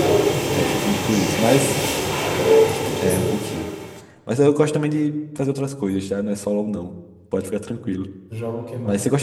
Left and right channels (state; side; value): identical; both; correlation 1.00